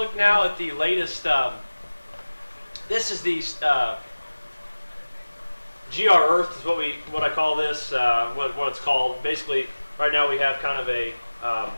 now at the latest. This is the GR Earth is what I call this. What it's called. Basically, right now we have kind of a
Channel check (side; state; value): both; inverted; correlation -1.00